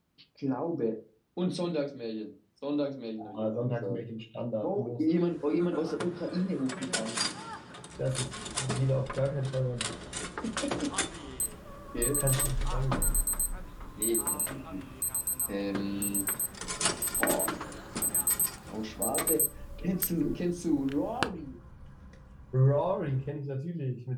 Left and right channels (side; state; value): both; identical; correlation 1.00